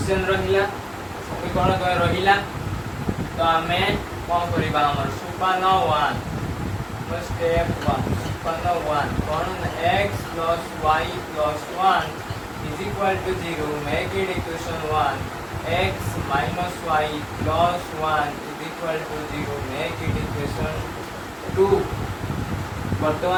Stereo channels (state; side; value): identical; both; correlation 1.00